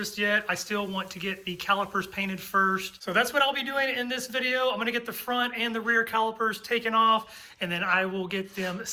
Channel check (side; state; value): both; identical; correlation 1.00